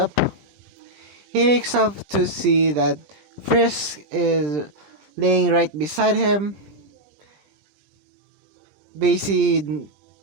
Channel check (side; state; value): left; late; 20 ms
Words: He wakes up to see that Frisk is laying right beside him. Basically,